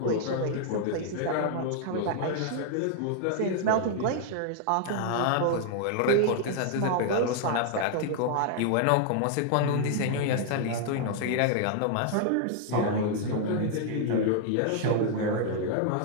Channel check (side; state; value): both; different; correlation 0.00